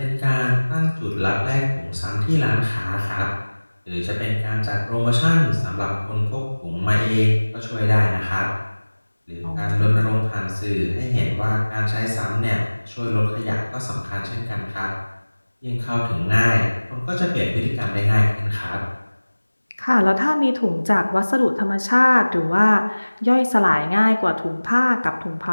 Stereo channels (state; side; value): inverted; both; correlation -1.00